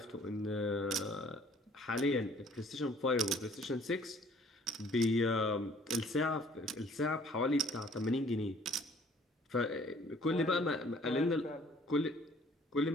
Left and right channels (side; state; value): both; normal; correlation 0.56